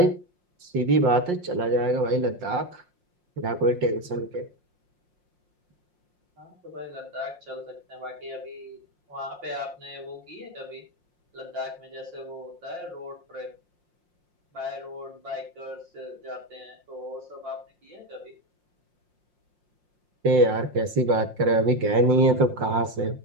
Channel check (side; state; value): left; late; 5.6 ms